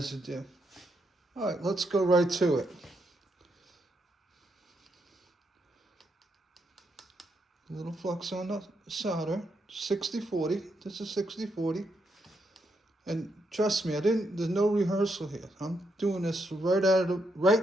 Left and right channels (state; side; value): normal; both; correlation 0.79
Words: All right, let's go right to it. A little flux on the solder. 60-40. This is 60-40. And trust me, there's no rehearsal here. I'm doing this right out